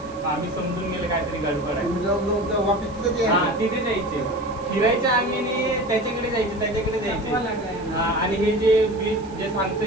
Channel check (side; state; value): right; noise; hiss, 25 dB below the sound